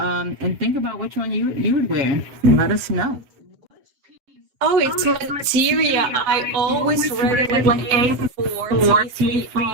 think about which one you would wear. Let us know. Oh, it's Materia. I always read it like A4,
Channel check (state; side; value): late; left; 7.5 ms